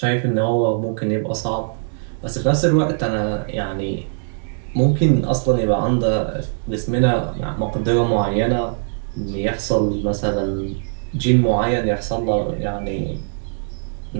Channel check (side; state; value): left; silent; digital silence